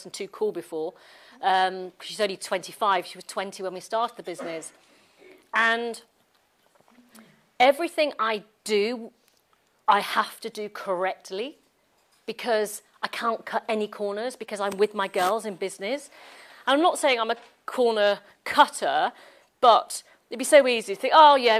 and too cool before. She's only 25. She was 20 when we started the business. And everything I do, I have to do correctly, because I can't cut any corners, because I'm with my girls in business. And I'm not saying I'm a corner cutter, but it'd be so easy to think, oh, yeah,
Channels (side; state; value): both; identical; correlation 1.00